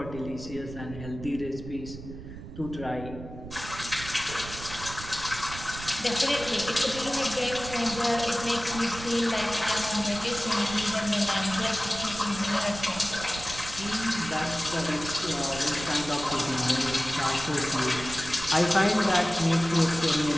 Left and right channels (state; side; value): noise; right; rumble, 12 dB below the sound